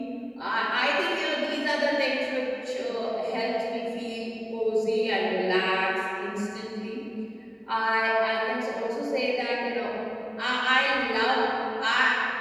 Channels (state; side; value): identical; both; correlation 1.00